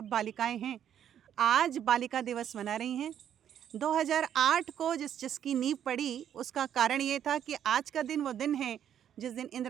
बालिकाएं हैं, आज बालिका दिवस मना रही हैं। 2008 को जिसकी नींव पड़ी, उसका कारण ये था कि आज का दिन वो दिन है जिस दिन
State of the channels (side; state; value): left; quieter; 9.7 dB